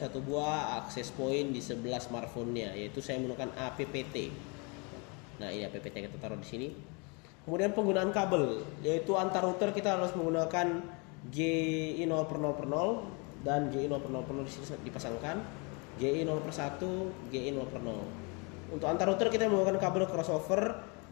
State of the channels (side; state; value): right; quieter; 31.7 dB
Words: buah access point di sebelah smartphone-nya, yaitu saya menggunakan APPT. Nah, ini APPT kita taruh di sini. Kemudian penggunaan kabel, yaitu antar router kita harus menggunakan GE0/0 dan GE0/0 di sini dipasangkan, GE0/1, GE0/0. Untuk antar router kita menggunakan kabel crossover,